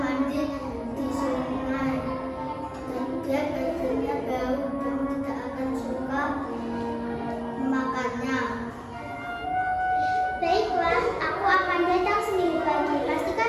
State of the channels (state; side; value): identical; both; correlation 1.00